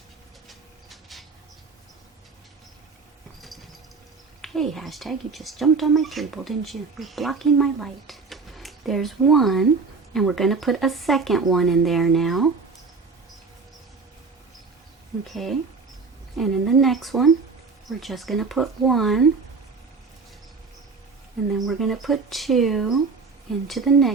Hey, hashtag, you just jumped on my table, didn't you? You're blocking my light. There's 1, and we're going to put a second one in there now. Okay, and in the next one, we're just going to put 1, and then we're going to put 2 into the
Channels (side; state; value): left; quieter; 4.6 dB